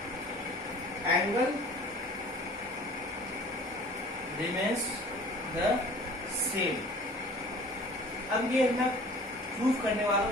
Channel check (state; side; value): normal; both; correlation 0.47